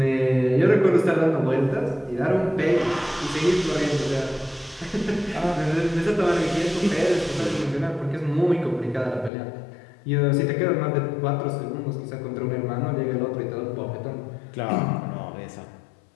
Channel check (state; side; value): drops out; right; at 9.3 s